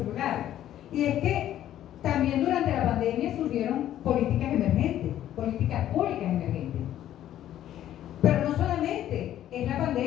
Y es que también durante la pandemia surgieron políticas emergentes, políticas públicas emergentes. Pero no solamente es la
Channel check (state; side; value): quieter; right; 12.0 dB